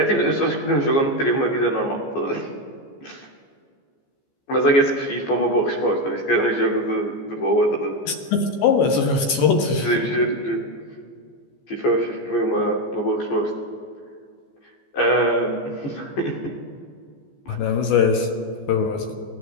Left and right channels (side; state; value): right; late; 14 ms